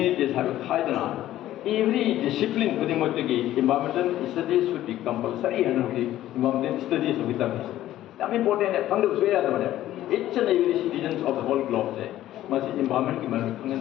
have a high than every discipline within the environmental studies should be compulsory and the environmental studies of the I'm important at Pandu Sway. Each and every citizens of the whole globe must environment in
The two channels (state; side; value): quieter; right; 13.7 dB